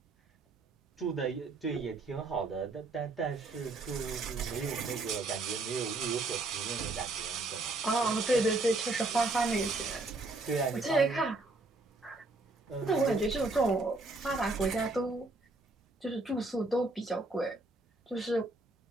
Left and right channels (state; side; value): quieter; left; 3.1 dB